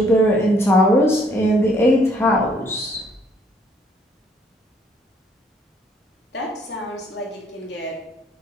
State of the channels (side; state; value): both; normal; correlation 0.65